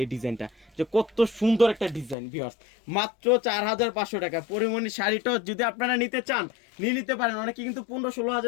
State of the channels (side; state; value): right; drops out; at 2.1 s